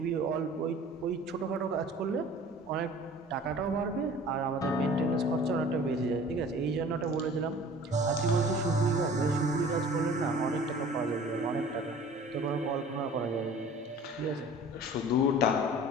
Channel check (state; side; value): normal; both; correlation 0.45